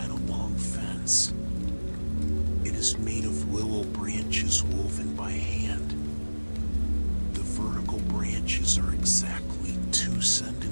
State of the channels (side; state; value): both; inverted; correlation -1.00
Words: a long fence. It is made of willow branches woven by hand. The vertical branches are exactly 2